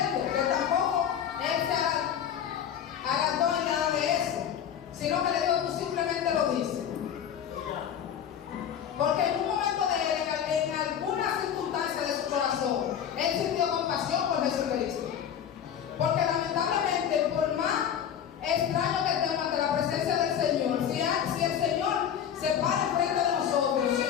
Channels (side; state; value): right; quieter; 9.0 dB